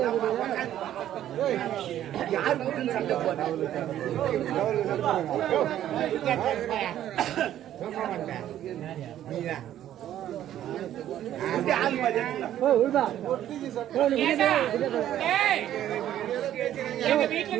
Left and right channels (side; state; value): left; quieter; 11.8 dB